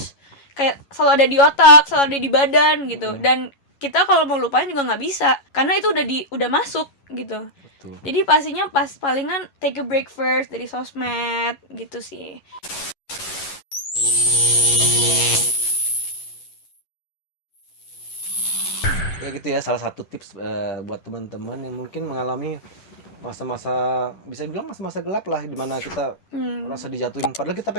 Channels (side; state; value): right; late; 11 ms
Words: kayak selalu ada di otak, selalu ada di badan gitu. Dan kita kalau mau lupain juga nggak bisa, karena itu udah masuk gitu. Betul. Jadi pastinya palingan take a break first dari sosmed gitu sih. Ya gitu ya, salah satu tips buat teman-teman yang mungkin mengalami masa-masa, bisa dibilang masa-masa gelap lah, dimana kita rasa dijatuhin padahal kita